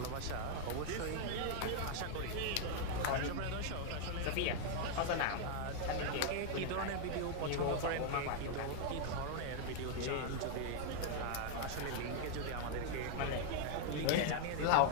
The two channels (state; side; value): different; both; correlation 0.00